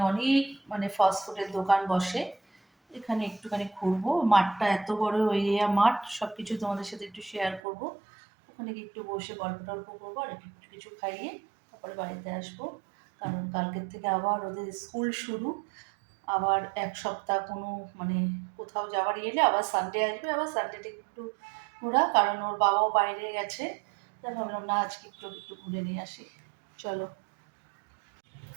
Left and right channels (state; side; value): drops out; left; at 7.6 s